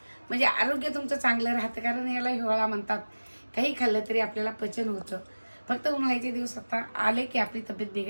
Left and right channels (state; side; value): inverted; both; correlation -1.00